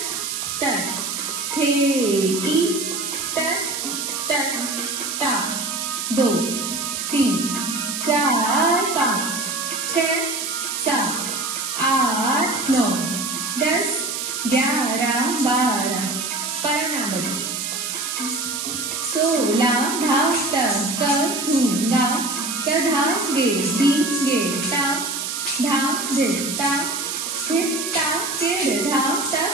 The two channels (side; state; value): right; noise; hiss, 3 dB below the sound